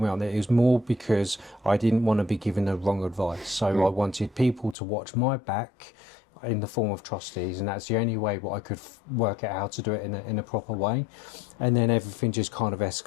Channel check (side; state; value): right; drops out; at 4.8 s